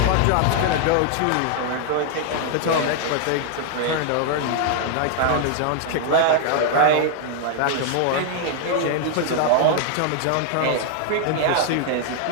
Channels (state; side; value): different; both; correlation 0.00